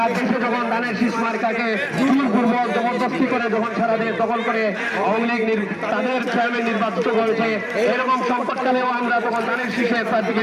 দেশে যখন ধানের শীষ মার্কাকে জোরপূর্বক জবরদস্তি করে যখন সারা দেশ দখল করে আওয়ামী লীগ তাদের চেয়ারম্যান নির্বাচিত করেছে, এরকম সংকটকালেও আমরা তখন ধানের শীষের প্রার্থীকে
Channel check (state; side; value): identical; both; correlation 1.00